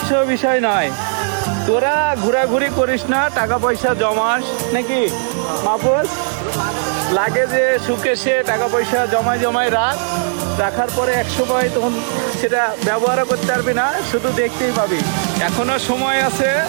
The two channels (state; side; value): silent; left; digital silence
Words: বিষয় নয়। তোরা ঘোরাঘুরি করিস না, টাকা পয়সা জমাস নাকি মাহফুজ? লাগে যে সুখে সে টাকা পয়সা জমায় জমায় রাখার পরে এক সময় তখন সেটা ব্যবহারও করতে পারবি না, শুধু দেখতেই পাবি। এখনো সময় আছে,